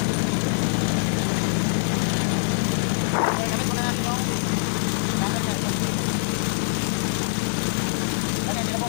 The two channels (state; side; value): silent; right; digital silence